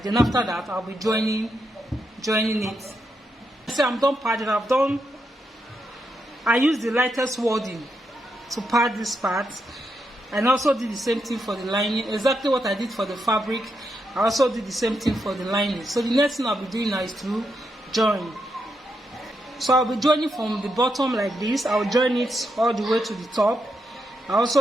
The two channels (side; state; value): both; normal; correlation 0.82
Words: Then after that, I'll be joining it. So I'm done padding. I use the lightest wording to pad this part, and also did the same thing for the lining. Exactly what I did for the fabric, I also did the same thing for the lining. So the next thing I'll be doing now is to join. So I'll be joining from the bottom like this. I'll join it all the way to the top. I